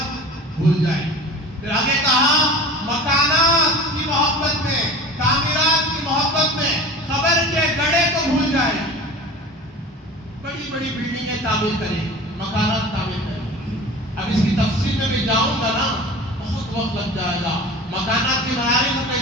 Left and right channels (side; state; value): both; normal; correlation 0.38